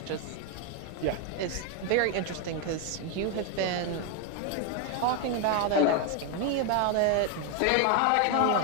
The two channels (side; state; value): both; different; correlation 0.01